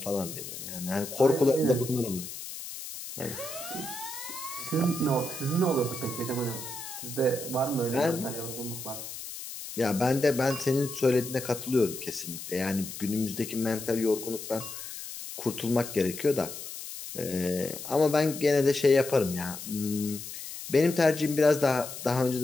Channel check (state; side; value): noise; left; hiss, 10 dB below the sound